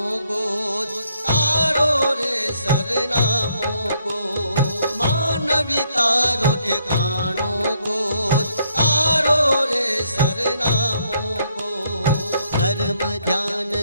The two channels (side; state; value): both; inverted; correlation -0.72